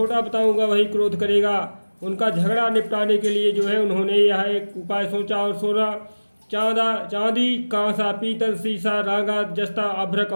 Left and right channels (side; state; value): both; inverted; correlation -1.00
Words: बताऊंगा वही क्रोध करेगा। उनका झगड़ा निपटाने के लिए उन्होंने यह एक उपाय सोचा और सोना, चांदी, कांसा, पीतल, शीशा, रागा, जस्ता, अभ्रक